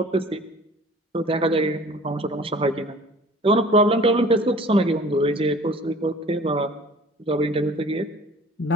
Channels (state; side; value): normal; both; correlation 0.48